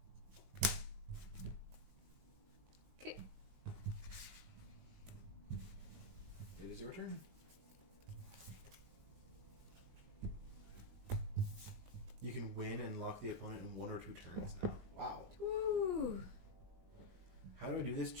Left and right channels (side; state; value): left; late; 20 ms